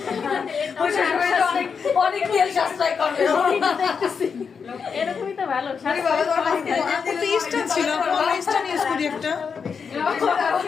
তেল সাশ্রয় করবে। এরকমই তো ভালো। ইস্টার ছিল, ইস্টার ইউজ করি একটা।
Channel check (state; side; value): quieter; right; 6.0 dB